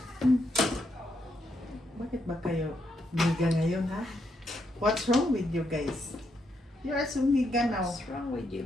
Bakit ba kayo miga ngayon ha? What's wrong with you guys? You are so miga now. What's wrong with you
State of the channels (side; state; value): both; normal; correlation 0.79